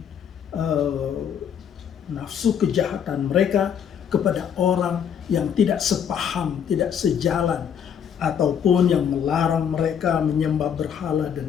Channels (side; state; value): right; quieter; 8.2 dB